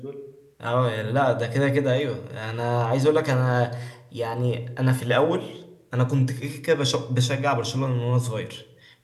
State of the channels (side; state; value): both; identical; correlation 1.00